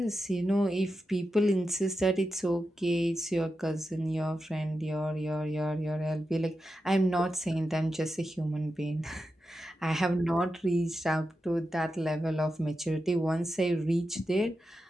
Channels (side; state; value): both; normal; correlation 0.89